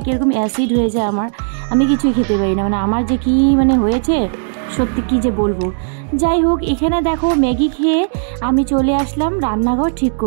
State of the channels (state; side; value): silent; left; digital silence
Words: কীরকম অ্যাসিড হয়ে যায় আমার, আমি কিছুই খেতে পারি না। মানে আমার যে কী মানে হয়েছে, সত্যি কী যে বলবো। যাই হোক, এখানে দেখো ম্যাগি খেয়ে আমি চলে আসলাম রান্নাঘর ঠিক